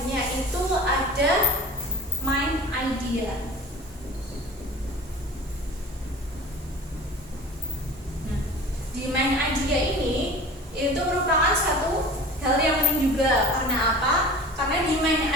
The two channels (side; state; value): both; normal; correlation 0.39